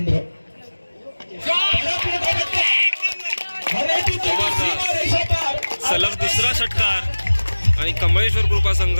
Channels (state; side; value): inverted; both; correlation -1.00